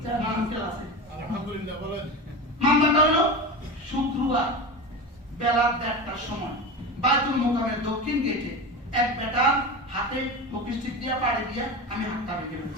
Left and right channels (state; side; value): normal; both; correlation 0.25